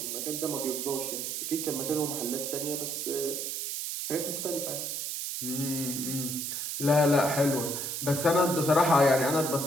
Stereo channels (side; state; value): right; noise; hiss, 3 dB below the sound